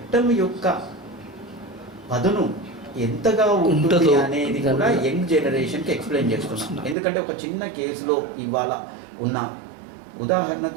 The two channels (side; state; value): left; drops out; at 7.0 s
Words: యొక్క పదును ఎంతగా ఉంటుంది అనేది కూడా యంగ్ జనరేషన్కి ఎక్స్ప్లెయిన్ చేస్తున్నాం. ఎందుకంటే ఒక చిన్న కేసులో ఇవాళ ఉన్న